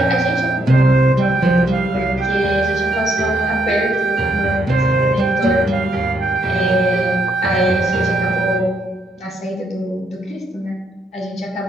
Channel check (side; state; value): both; normal; correlation 0.77